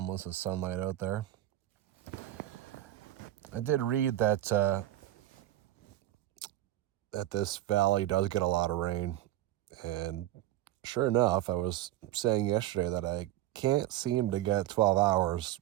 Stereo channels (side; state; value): left; quieter; 14.3 dB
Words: of sunlight out there. I did read that that this valley does get a lot of rain, and sure enough, I was saying yesterday that I can't seem to get 12 hours